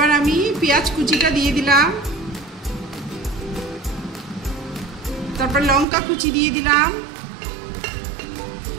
আমি পেঁয়াজ কুচিটা দিয়ে দিলাম, তারপর লঙ্কা কুচি দিয়ে দিলাম,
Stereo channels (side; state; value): left; drops out; at 5.9 s